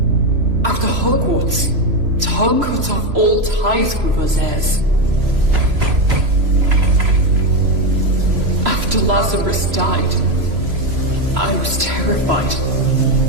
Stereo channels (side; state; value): left; late; 3.0 ms